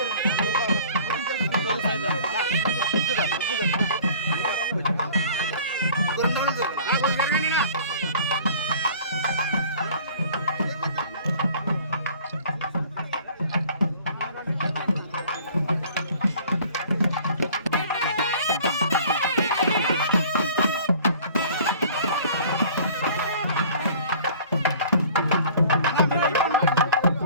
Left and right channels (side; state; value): both; inverted; correlation -0.49